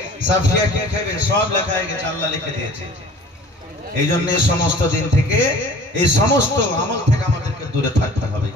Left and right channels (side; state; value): both; normal; correlation 0.48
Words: সাফিয়া কি খাবে, সব লেখা হয়ে গেছে, আল্লাহ লিখে দিয়েছে। এই জন্য এই সমস্ত দিন থেকে, এই সমস্ত আমল থেকে আমাদেরকে দূরে থাকতে হবে।